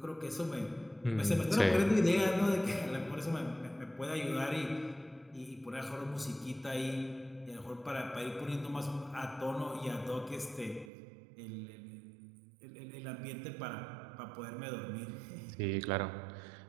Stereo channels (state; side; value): drops out; left; at 10.9 s